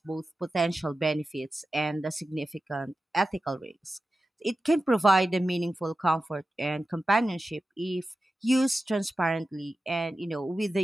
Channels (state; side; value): normal; both; correlation 0.93